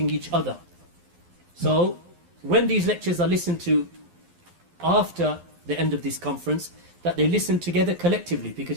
each other. So when these lectures are listened to after the end of this conference, that they listen together collectively,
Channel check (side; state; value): left; late; 12 ms